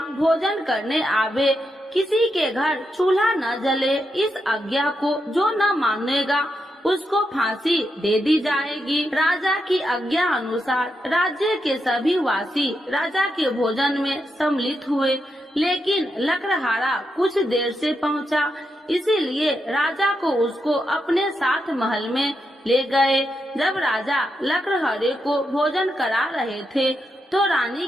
भोजन करने आवे, किसी के घर चूल्हा न जले। इस आज्ञा को जो न मानेगा उसको फांसी दे दी जाएगी। राजा की आज्ञा अनुसार राज्य के सभी वासी राजा के भोजन में सम्मिलित हुए, लेकिन लकड़हारा कुछ देर से पहुंचा, इसीलिए राजा को उसको अपने साथ महल में ले गए। जब राजा लकड़हारे को भोजन करा रहे थे तो रानी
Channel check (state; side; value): normal; both; correlation 0.84